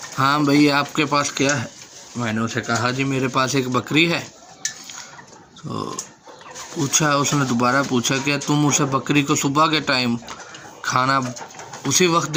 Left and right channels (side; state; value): both; identical; correlation 1.00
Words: ہاں بھائی آپ کے پاس کیا ہے؟ میں نے اسے کہا، جی میرے پاس ایک بکری ہے۔ تو اس نے دوبارہ پوچھا، کہ تم اسے بکری کو صبح کے ٹائم کھانا اسی وقت